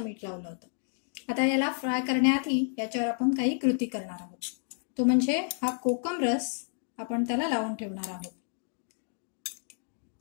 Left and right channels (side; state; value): right; silent; digital silence